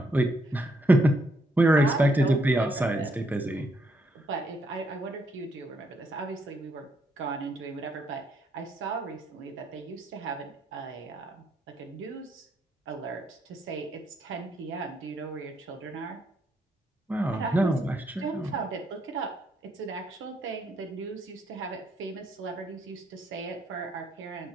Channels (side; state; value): both; normal; correlation 0.75